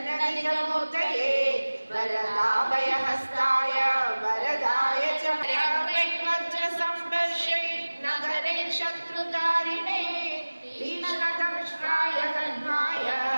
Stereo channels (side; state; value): both; inverted; correlation -1.00